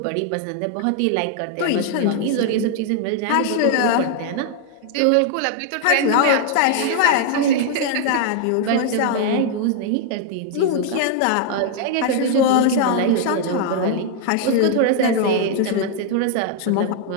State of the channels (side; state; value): both; different; correlation 0.00